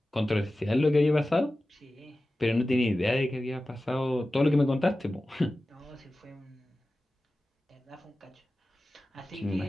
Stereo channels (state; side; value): normal; both; correlation 0.95